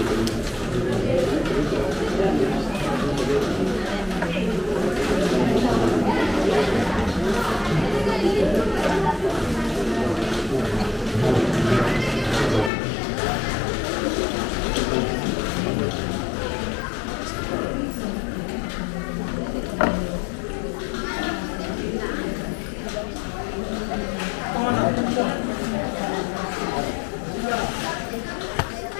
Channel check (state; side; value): drops out; right; at 12.7 s